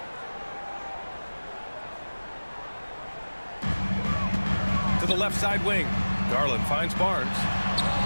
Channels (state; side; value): inverted; both; correlation -1.00